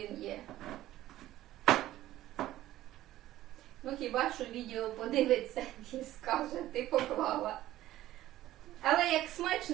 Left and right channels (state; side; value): quieter; left; 14.6 dB